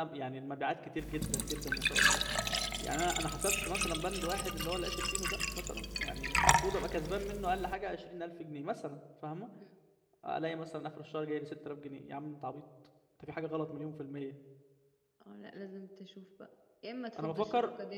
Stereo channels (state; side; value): identical; both; correlation 1.00